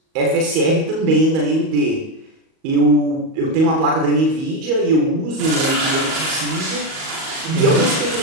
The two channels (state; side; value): late; left; 38 ms